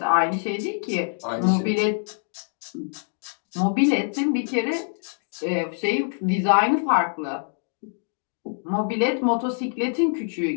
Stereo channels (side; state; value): right; silent; digital silence